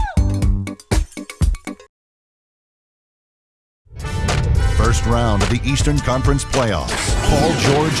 First round of the Eastern Conference playoffs. Paul George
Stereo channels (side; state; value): both; identical; correlation 1.00